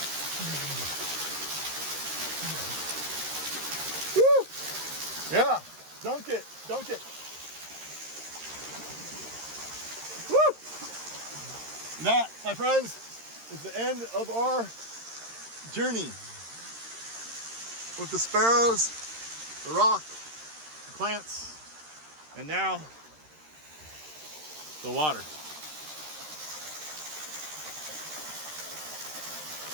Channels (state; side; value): late; left; 13 ms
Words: Woo. Yeah, dunk it, dunk it. Woo. That, my friends, is the end of our journey with the sparrows, the rock, the plants, and now the water.